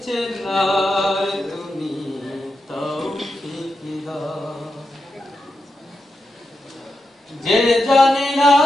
চেনার তুমি তৌফিক দাও। যে জানে না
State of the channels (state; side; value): normal; both; correlation 0.88